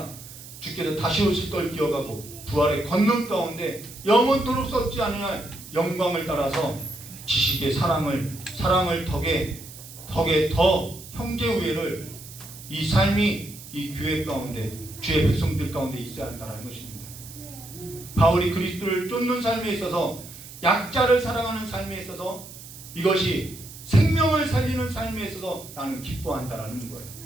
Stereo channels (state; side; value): noise; right; hiss, 16 dB below the sound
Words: 주께서 다시 오실 걸 기억하고 부활의 권능 가운데 영원토록 썩지 않을 영광을 따라서 지식의 사랑을 덕에 더 형제 우애를, 이 삶이 이 교회 가운데 주의 백성들 가운데 있어야 한다는 것입니다. 바울이 그리스도를 쫓는 삶에 있어서, 약자를 사랑하는 삶에 있어서, 이것이 생명을 살리는 삶에 있어서 나는 기뻐한다라는 거예요.